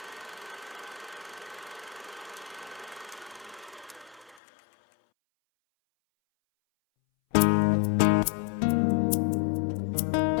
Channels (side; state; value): right; drops out; at 4.4 s